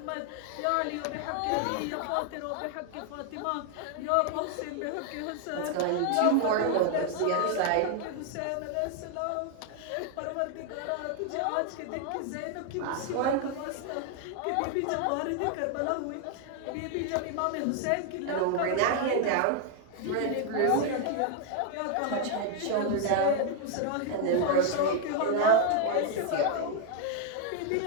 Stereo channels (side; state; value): both; different; correlation 0.00